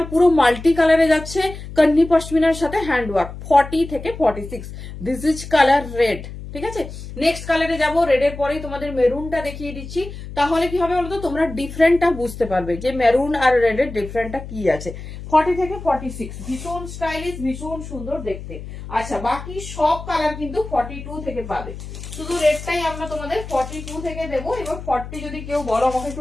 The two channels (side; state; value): left; noise; hum, 11 dB below the sound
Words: পুরো মাল্টি কালারে যাচ্ছে, কন্নি পশমিনার সাথে হ্যান্ড ওয়ার্ক, 40 থেকে 46। This is colour red. ঠিক আছে, নেক্সট কালারে যাব, রেডের পরেই তোমাদের মেরুনটা দেখিয়ে দিচ্ছি। তাহলে কি হবে বলতো, তোমরা ডিফারেন্টটা বুঝতে পারবে যে মেরুন আর রেডের ডিফারেন্টটা কি আছে। 40 থেকে 46 ভীষণ স্টাইলিশ, ভীষণ সুন্দর দেখতে। আচ্ছা বাকি সব কালার কিন্তু 42 থেকে পাবে, শুধু রেডটাই আমরা তোমাদের 42 থেকে দেবো। এবার 40 যদি কেউ বলো আমাকে একটু